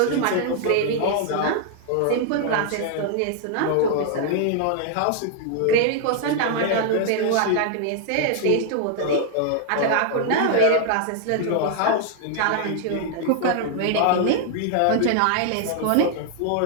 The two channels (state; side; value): different; both; correlation -0.01